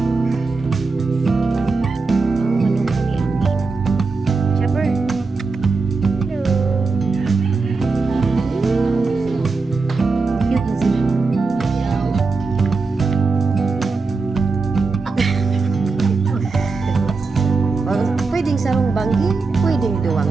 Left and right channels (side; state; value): left; quieter; 4.1 dB